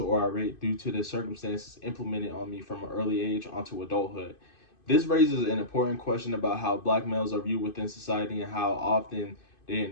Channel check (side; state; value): right; late; 2.5 ms